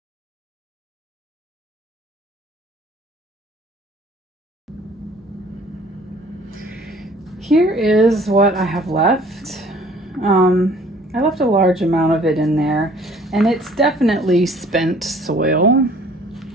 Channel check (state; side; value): normal; both; correlation 0.54